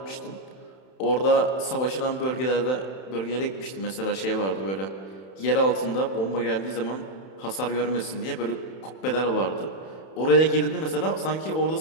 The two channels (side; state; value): right; late; 31 ms